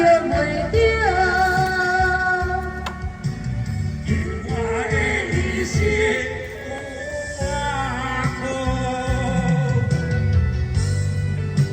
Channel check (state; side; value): identical; both; correlation 1.00